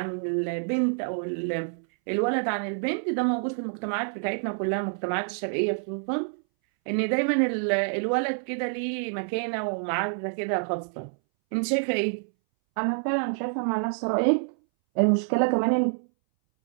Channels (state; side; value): silent; left; 60 dB below the other